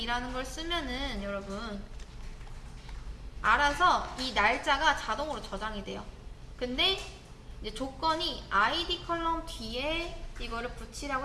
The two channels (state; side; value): identical; both; correlation 1.00